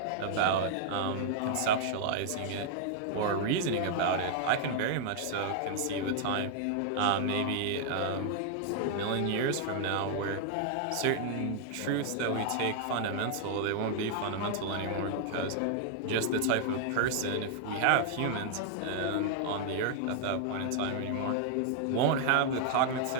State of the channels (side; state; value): both; different; correlation -0.01